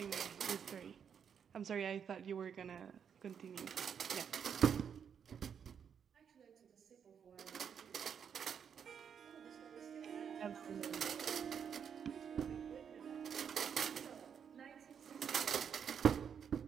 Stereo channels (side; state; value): left; quieter; 7.6 dB